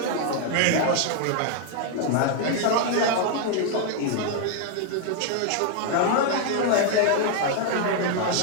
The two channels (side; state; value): both; different; correlation 0.00